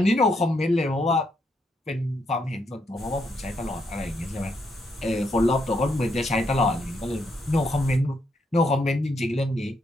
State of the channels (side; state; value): both; normal; correlation 0.77